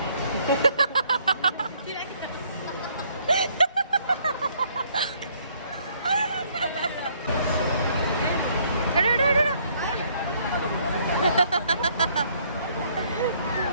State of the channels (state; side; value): inverted; both; correlation -0.65